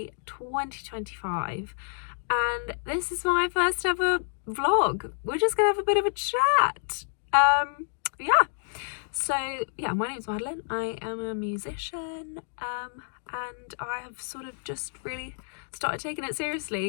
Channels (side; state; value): right; silent; digital silence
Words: 2025 and this is my first ever vlog. We're just gonna have a bit of a chat. My name's Madeleine. I am a musician and I have sort of just really started taking it